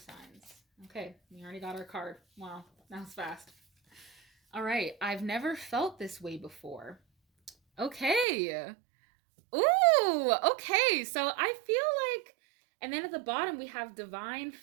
Okay, we already got our card. Wow, that was fast. All right, I've never felt this way before. Okay. Ooh, okay. So I feel like, and then at the bottom we have divine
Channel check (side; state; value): left; drops out; at 8.2 s